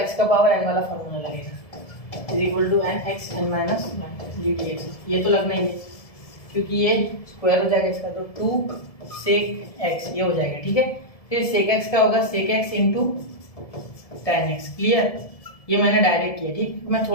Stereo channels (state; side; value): late; right; 1.7 ms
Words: का पावर n वाला फॉर्मूला लगेगा, is equal to n x n minus dx, ये तो लगना ही है क्योंकि ये स्क्वायर हो जाएगा इसका, तो 2 sec x ये हो जाएगा, ठीक है। फिर sec x का होगा sec x into tan x, clear, ये मैंने डायरेक्ट किया, ठीक, मैं